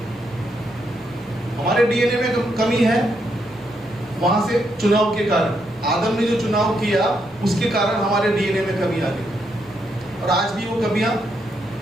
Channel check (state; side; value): normal; both; correlation 0.78